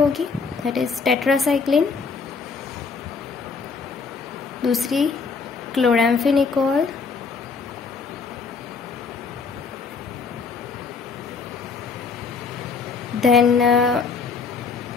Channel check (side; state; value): right; quieter; 5.0 dB